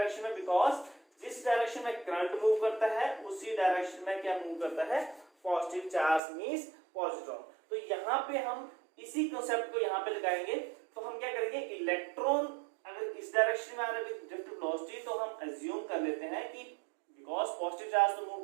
में, बिकॉज जिस डायरेक्शन में करंट मूव करता है उसी डायरेक्शन में क्या मूव करता है पॉजिटिव चार्ज मींस पॉजिट्रॉन। तो यहाँ पे हम इसी कंसेप्ट को यहाँ पे लगाएंगे। तो हम क्या करेंगे, इलेक्ट्रॉन अगर इस डायरेक्शन में आ रहा है विद ड्रिफ्ट वेलोसिटी तो हम अज्यूम कर लेते हैं कि बिकॉज पॉजिटिव चार्ज तो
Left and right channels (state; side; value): drops out; left; at 6.2 s